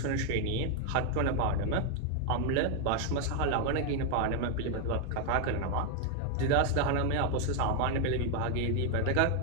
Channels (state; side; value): different; both; correlation 0.01